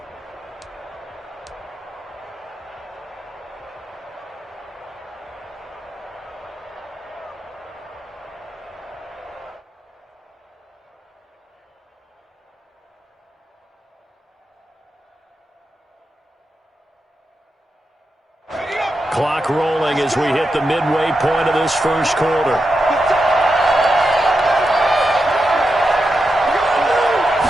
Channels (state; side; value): normal; both; correlation 0.87